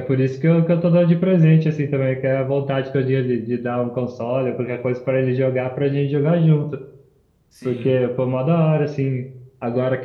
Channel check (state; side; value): identical; both; correlation 1.00